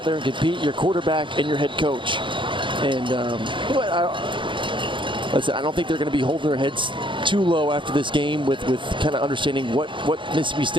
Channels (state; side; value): late; left; 0.24 ms